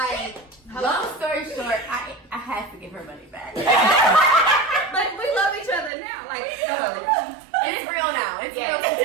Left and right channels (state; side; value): drops out; left; at 5.9 s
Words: Long story short, I had to give her money back. But we love each other now. Like, It's real now. It's real